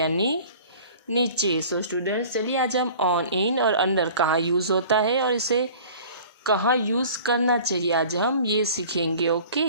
नीचे. सो स्टूडेंट्स चलिए आज हम ऑन, इन और अंडर कहाँ यूज़ होता है और इसे कहाँ यूज़ करना चाहिए आज हम ये सीखेंगे.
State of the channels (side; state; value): both; inverted; correlation -0.45